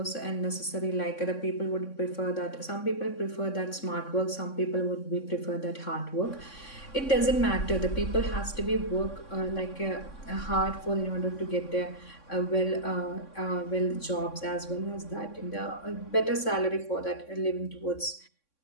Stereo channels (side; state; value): right; late; 3.6 ms